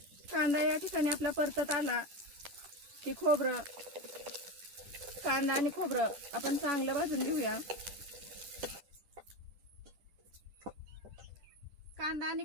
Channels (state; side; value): late; left; 10 ms